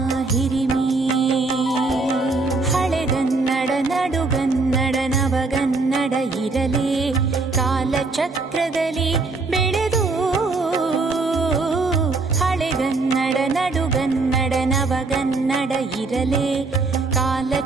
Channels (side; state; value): left; quieter; 3.7 dB